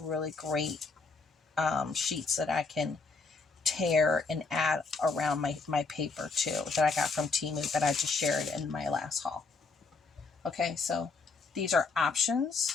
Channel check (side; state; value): right; quieter; 4.2 dB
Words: great sheets that I can tear and add around my paper too, that I got from Temu, that I just shared in my last haul. Okay, so these are